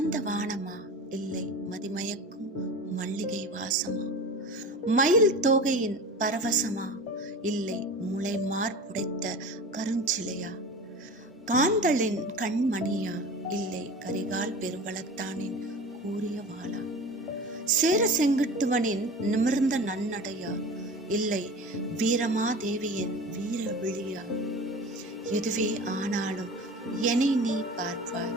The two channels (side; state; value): both; normal; correlation 0.34